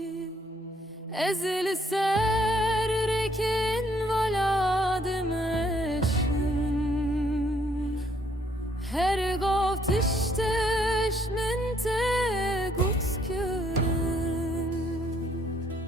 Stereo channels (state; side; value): normal; both; correlation 0.67